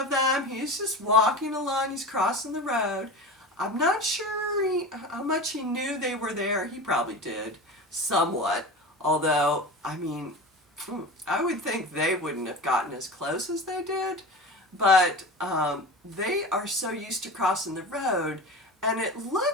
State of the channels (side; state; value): both; normal; correlation 0.30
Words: them. He's just walking along. He's crossing the road. I'm not sure how much he knew they were there. He probably did, somewhat. Although, I mean, I would think they wouldn't have gotten as close as they did. But they are so used to crossing the road, and it